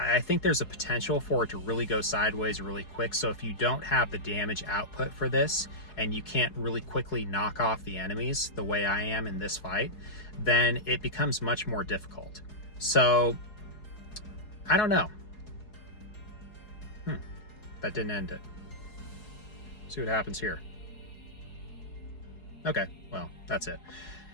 think there's a potential for it to really go sideways really quick. So if you don't have the damage output for this, and you can't really quickly knock off the enemies the way I am in this fight, then it becomes much more difficult. So I don't know. That didn't end it. See what happens here. Okay, well, that's it.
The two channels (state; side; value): late; right; 4.8 ms